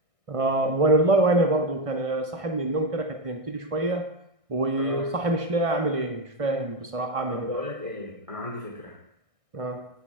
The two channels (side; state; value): left; late; 1.6 ms